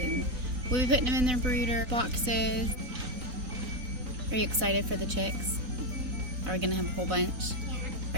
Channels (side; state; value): left; late; 3.4 ms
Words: we'll be putting them in their brooder boxes. Are you excited for the chicks? Are we gonna have a whole bunch? Yeah.